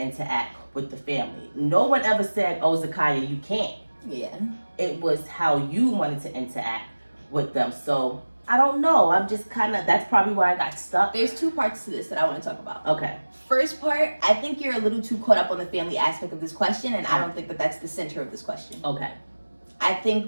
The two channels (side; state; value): both; inverted; correlation -1.00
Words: interact with the family. No one ever said, oh, Zakiya, you can't. Yeah. It was how you wanted to interact with them. So I don't know. I'm just that's probably where I got stuck. There's two parts to this that I want to talk about. Okay. First part, I think you're a little too caught up on the family aspect of this question, and I don't think that that's the center of this question. Okay. I